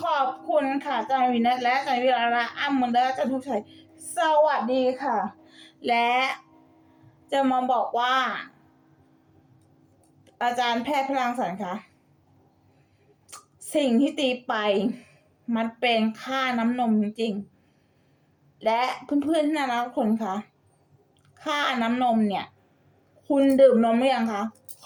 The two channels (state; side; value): identical; both; correlation 1.00